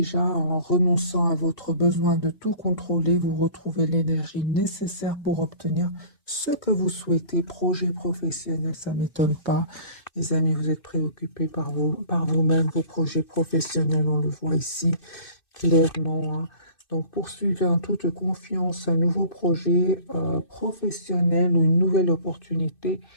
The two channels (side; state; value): right; late; 2.6 ms